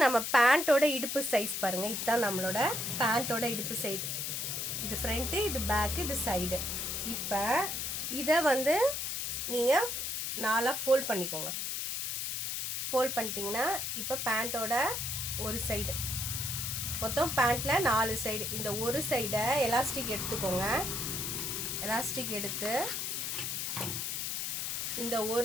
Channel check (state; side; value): noise; left; hiss, 2 dB below the sound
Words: நம்ம பேண்ட்டோட இடுப்பு சைஸ் பாருங்கள். இதுதான் நம்மளோட பேண்ட்டோட இடுப்பு சைடு. இது ஃப்ரண்ட்டு, இது பேக்கு, இது சைடு. இப்போ இதை வந்து நீங்கள் 4 ஃபோல்ட் பண்ணிக்கோங்க. ஃபோல்ட் பண்ணிட்டீங்கன்னா இப்போ பேண்ட்டோட ஒரு சைடு, மொத்தம் பேண்ட்டில் 4 சைடு. இந்த ஒரு சைடை எலாஸ்டிக் எடுத்துக்கோங்க. எலாஸ்டிக் எடுத்து இந்த